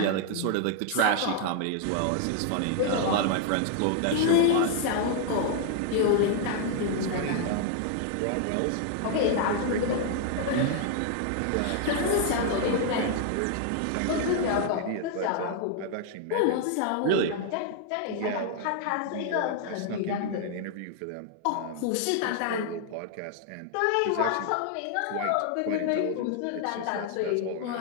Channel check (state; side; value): different; both; correlation 0.00